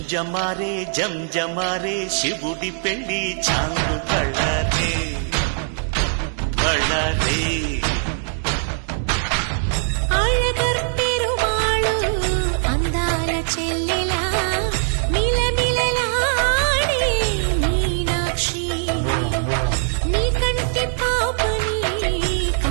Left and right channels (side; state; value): left; silent; digital silence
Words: జంజమారే శివుడి పెళ్లి చాంగు బళ్ళారే బళ్ళారే ఆళ్ళగర్పెరుమాళు అందాల చెల్లెలా మిలమిలలాడే మీనాక్షి నీ కంటి పాపని